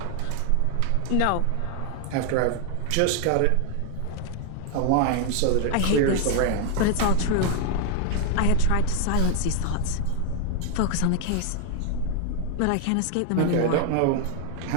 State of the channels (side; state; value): both; different; correlation 0.00